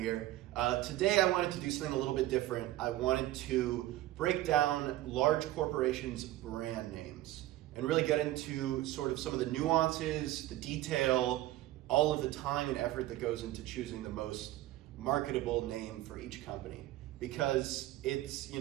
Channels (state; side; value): quieter; left; 15.6 dB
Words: Today I wanted to do something a little bit different. I wanted to break down large corporations' brand names and really get into sort of some of the nuances, the detail, all of the time and effort that goes into choosing the most marketable name for each company. Because it's,